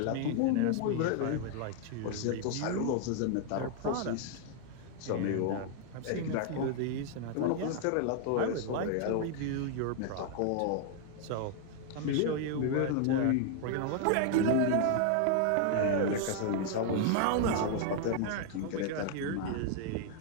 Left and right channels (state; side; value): different; both; correlation 0.00